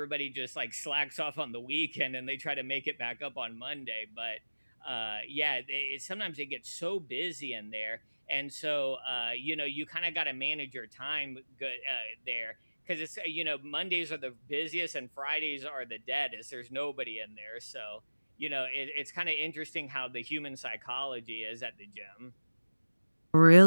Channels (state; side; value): inverted; both; correlation -1.00